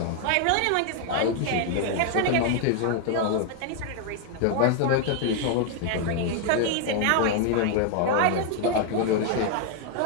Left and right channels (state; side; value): different; both; correlation 0.00